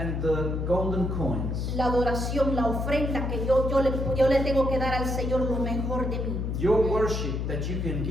the golden coins, la adoración, la ofrenda que yo le tengo que dar al Señor lo mejor de mí. your worship that you can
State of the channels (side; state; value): left; noise; hum, 1 dB below the sound